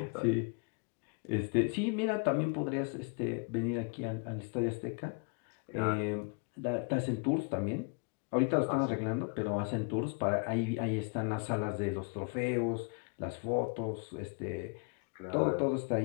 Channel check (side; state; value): right; quieter; 34.2 dB